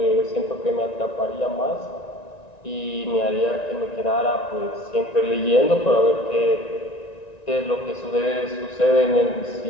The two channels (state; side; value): late; right; 1.9 ms